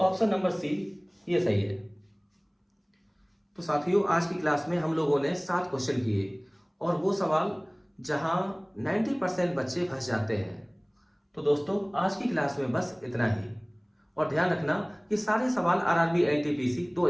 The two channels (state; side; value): identical; both; correlation 1.00